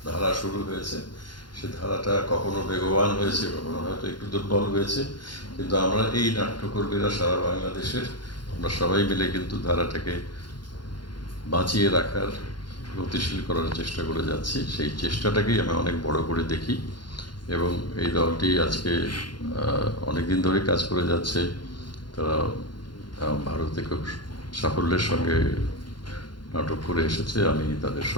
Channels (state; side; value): late; right; 0.71 ms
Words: ধারা শুরু হয়েছে, সে ধারাটা কখনো বেগবান হয়েছে, কখনো হয়তো একটু দুর্বল হয়েছে, কিন্তু আমরা এই নাট্যকর্মীরা সারা বাংলাদেশের আমরা সবাই মিলে কিন্তু ধারাটাকে বাঁচিয়ে রাখার, গতিশীল করার চেষ্টা করে যাচ্ছি। সেই চেষ্টাটাকেই আমি অনেক বড় করে দেখি এবং এই দলটি আজকে অনেক দিন ধরে কাজ করে যাচ্ছে। তারা ভারতে খুব সাফল্যের সঙ্গে নাটক করে এসেছে। আমি তাদের